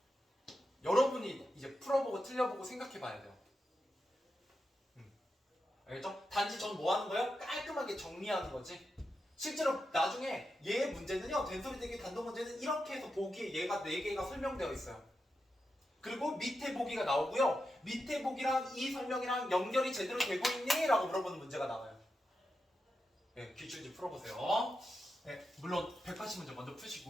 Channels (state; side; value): normal; both; correlation 0.88